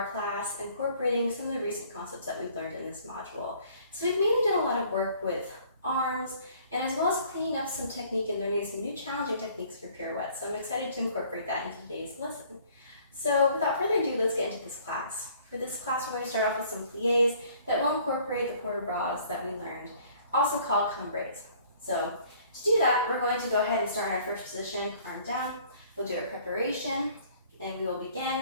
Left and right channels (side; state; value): both; inverted; correlation -0.57